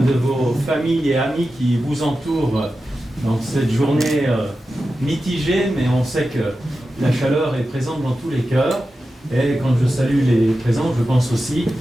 de vos familles et amis qui vous entourent dans cette journée mitigée, mais on sait que la chaleur est présente dans tous les cœurs. Et quand je salue les présents, je pense aussi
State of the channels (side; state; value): both; normal; correlation 0.92